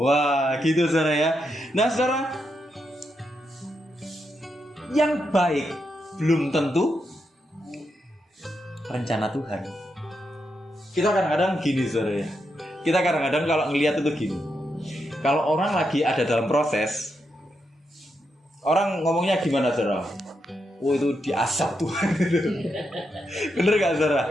Wah, gitu saudara ya. Nah saudara, yang baik belum tentu rencana Tuhan. Kita kadang-kadang gini saudara ya. Kita kadang-kadang kalau ngelihat itu gini. Kalau orang lagi ada dalam proses, orang ngomongnya gimana saudara? oh itu diasap Tuhan gitu. Bener gak saudara?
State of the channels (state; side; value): normal; both; correlation 0.83